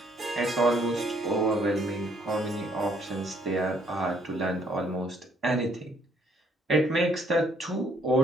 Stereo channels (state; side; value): normal; both; correlation 0.66